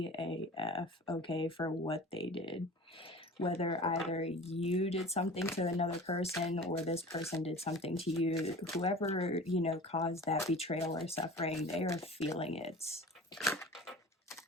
AF, okay, for what they did. Whether either you did something to another person or this person did something to you, whoever, you know, caused that betrayal or suffering, they are feeling it.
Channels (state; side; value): normal; both; correlation 0.39